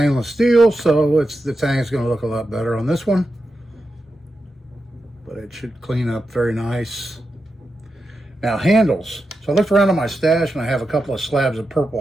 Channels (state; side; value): normal; both; correlation 0.89